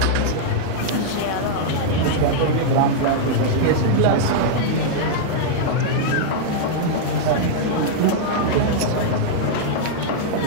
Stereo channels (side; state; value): both; different; correlation -0.01